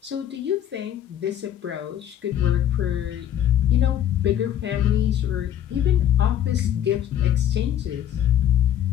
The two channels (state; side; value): quieter; right; 10.8 dB